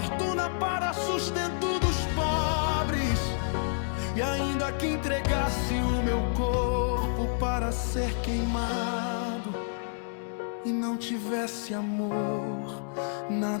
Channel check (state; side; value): silent; right; 59 dB below the other